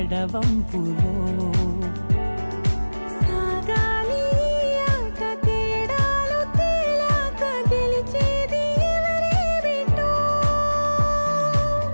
సాగాలి ఆట తేడాలు తేలాక గెలిచేది ఎవరే బిడ్డో.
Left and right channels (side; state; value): both; inverted; correlation -1.00